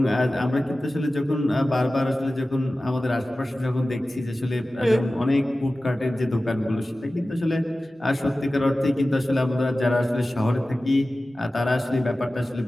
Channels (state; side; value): normal; both; correlation 0.96